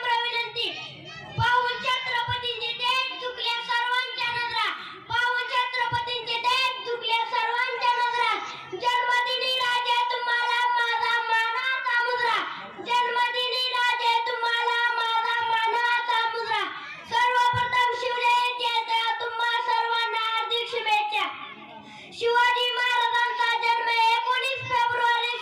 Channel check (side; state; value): both; identical; correlation 1.00